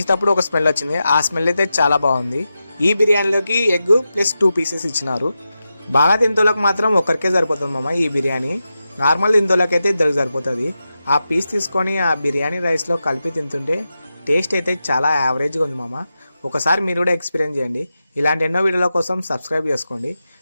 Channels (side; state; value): both; inverted; correlation -0.90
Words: ఒక స్మెల్ వచ్చింది, ఆ స్మెల్ అయితే చాలా బాగుంది. ఈ బిర్యానీలోకి ఎగ్ ప్లస్ 2 పీసెస్ ఇచ్చినారు. బాగా తింటోళ్ళకి మాత్రం ఒకరికే సరిపోతుంది మామ ఈ బిర్యానీ. నార్మల్ తింటోళ్ళకి అయితే ఇద్దరికి సరిపోతుంది. ఆ పీస్ తీసుకొని ఆ బిర్యానీ రైస్లో కలిపి తింటుంటే టేస్ట్ అయితే చాలా యావరేజ్గా ఉంది మామ. ఒకసారి మీరు కూడా ఎక్స్పీరియన్స్ చేయండి. ఇలాంటి ఎన్నో వీడియోల కోసం సబ్స్క్రైబ్ చేసుకోండి.